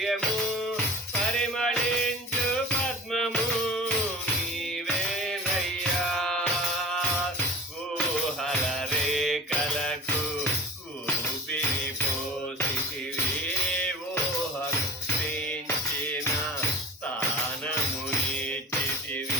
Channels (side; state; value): both; normal; correlation 0.34